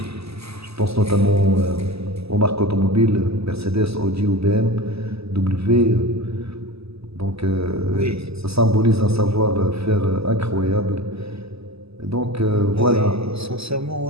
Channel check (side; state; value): left; late; 0.78 ms